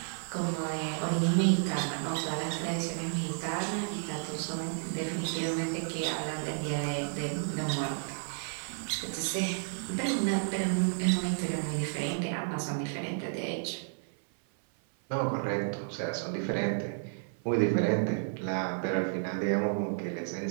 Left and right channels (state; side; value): silent; left; 57 dB below the other